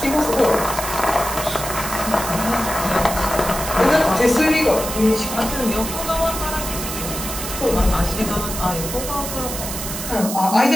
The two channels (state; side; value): noise; right; hiss, 6 dB below the sound